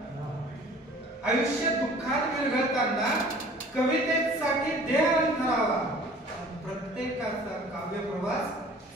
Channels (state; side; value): normal; both; correlation 0.49